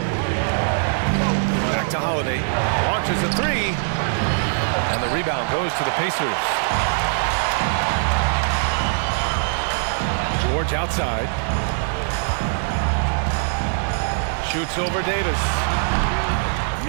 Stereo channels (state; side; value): silent; left; digital silence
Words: Back to Holiday. Launches a 3. And the rebound goes to the Pacers. George outside. Shoots over Davis.